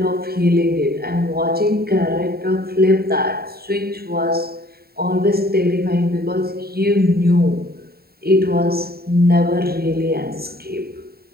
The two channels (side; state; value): left; late; 0.45 ms